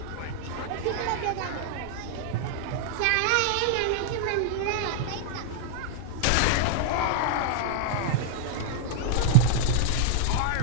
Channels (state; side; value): different; both; correlation -0.01